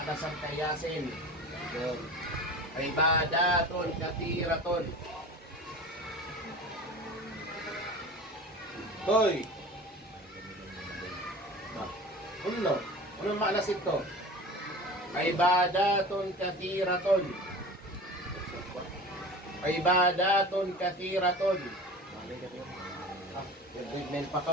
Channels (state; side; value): normal; both; correlation 0.37